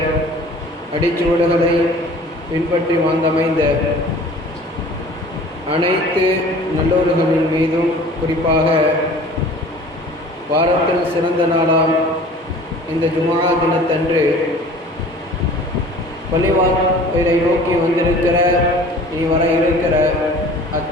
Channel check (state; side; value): normal; both; correlation 0.46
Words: அடிச்சுவடுகளை பின்பற்றி வாழ்ந்தமைந்த அனைத்து நல்லோர்களின் மீதும், குறிப்பாக வாரத்தில் சிறந்த நாளாம் இந்த ஜுமா தினத்தன்று பள்ளிவாசலை நோக்கி வந்திருக்கிற இனி வர இருக்கிற